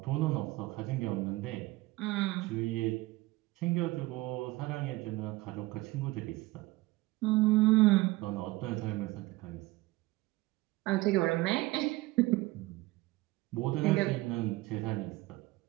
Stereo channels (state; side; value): quieter; left; 19.9 dB